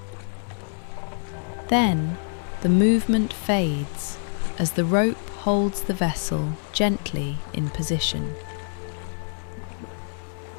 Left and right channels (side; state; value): right; silent; 59 dB below the other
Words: Then the movement fades as the rope holds the vessel gently in position.